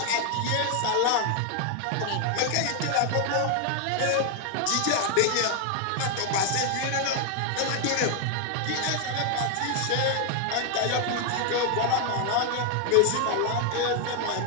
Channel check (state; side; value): different; both; correlation 0.00